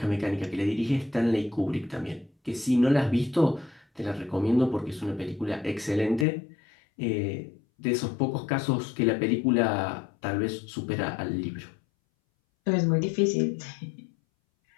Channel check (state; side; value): drops out; right; at 6.2 s